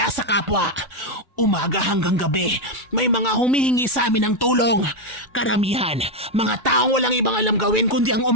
sa kapwa. Umaga hanggang gabi, may mga humihingi sa amin ng tulong. Karamihan, mga taong walang ibang alam gawin kundi ang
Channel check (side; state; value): both; normal; correlation 0.04